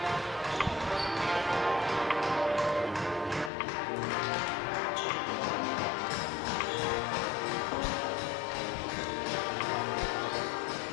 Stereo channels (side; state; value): right; drops out; at 3.5 s